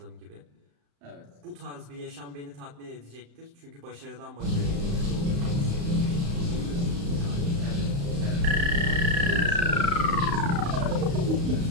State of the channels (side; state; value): left; late; 35 ms